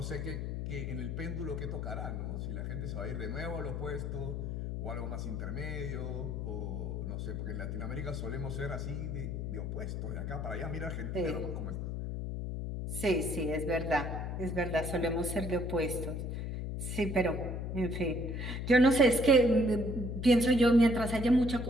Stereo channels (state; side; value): noise; left; hum, 3 dB below the sound